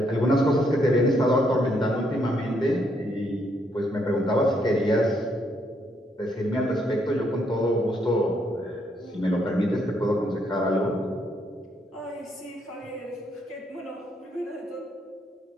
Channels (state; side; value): normal; both; correlation 0.73